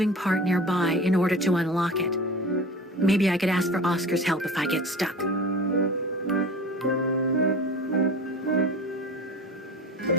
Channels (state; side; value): normal; both; correlation 0.36